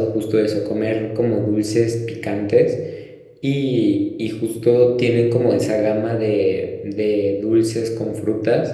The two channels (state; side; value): identical; both; correlation 1.00